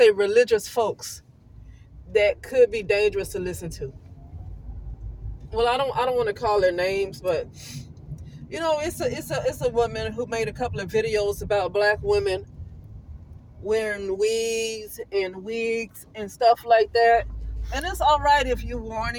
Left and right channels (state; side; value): identical; both; correlation 1.00